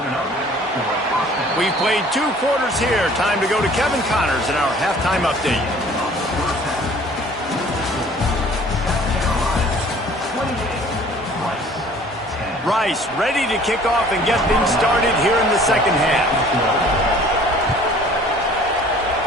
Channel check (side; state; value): both; normal; correlation 0.52